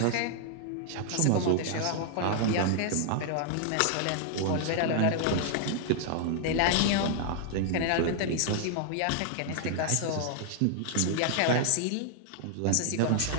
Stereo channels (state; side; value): different; both; correlation 0.00